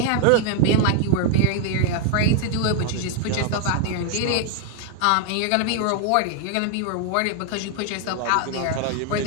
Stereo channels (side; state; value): both; different; correlation 0.00